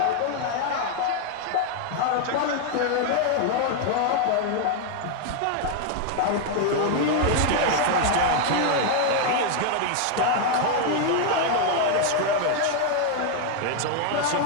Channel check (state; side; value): different; both; correlation 0.01